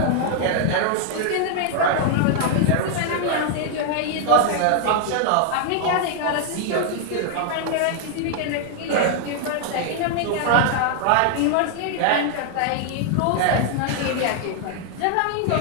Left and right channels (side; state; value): both; different; correlation 0.00